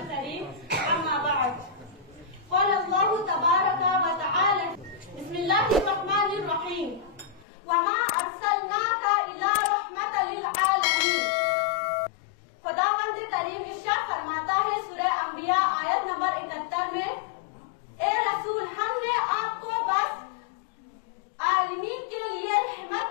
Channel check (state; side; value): drops out; right; at 7.5 s